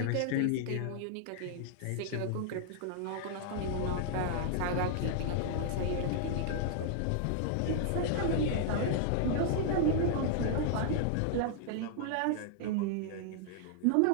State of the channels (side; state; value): both; different; correlation -0.01